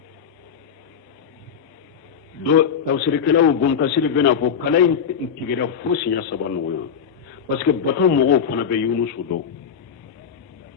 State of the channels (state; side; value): quieter; right; 7.3 dB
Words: do tawsirikala u bon kasiri bena fo kala intigira fosi ya sabanu yo parce que bato mogo fana be yunusu do